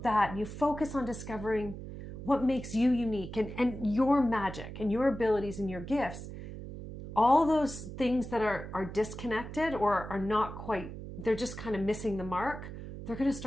that, and you focus on discovering what makes you unique and your magic and your abilities and your gifts, all those things that are disconnected or are not quite, they're just kind of missing the mark, they're going to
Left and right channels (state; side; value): noise; right; hum, 10 dB below the sound